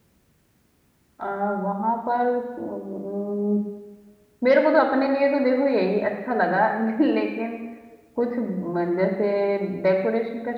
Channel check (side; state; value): both; identical; correlation 1.00